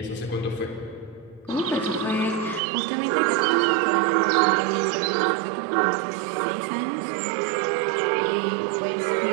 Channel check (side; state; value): left; drops out; at 2.6 s